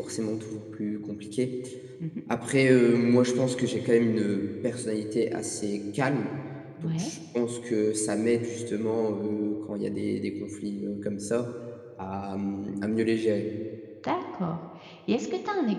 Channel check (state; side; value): identical; both; correlation 1.00